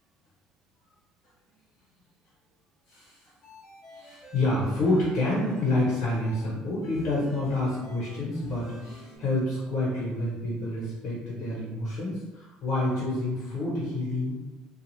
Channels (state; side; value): normal; both; correlation 0.59